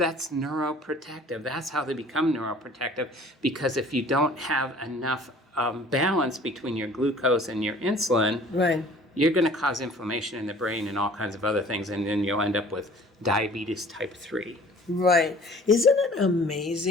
neuroprotective. That's how they become neuroprotective, because if you don't have enough balance between your glucose and your insulin, Right. you're going to cause inflammation in the brain and all kinds of other things, and then you'll end up with diabetes type 3. Right. Isn't it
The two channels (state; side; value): normal; both; correlation 0.50